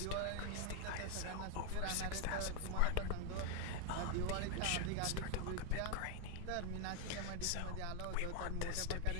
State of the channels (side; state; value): both; different; correlation 0.01